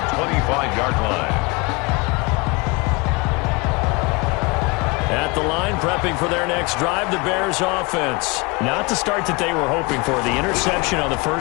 25-yard line. At the line, prepping for their next drive, the Bears offense. Not the start that they were hoping for. The interception on the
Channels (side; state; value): right; quieter; 26.4 dB